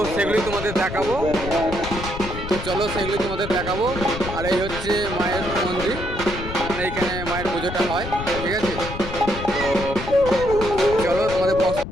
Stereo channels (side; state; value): left; noise; rumble, 8 dB below the sound